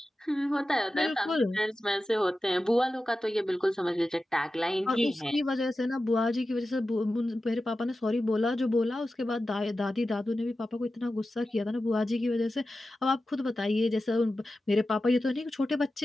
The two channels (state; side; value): normal; both; correlation 0.93